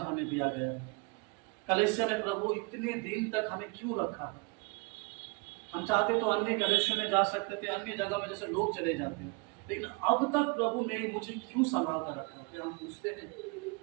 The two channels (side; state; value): left; quieter; 29.5 dB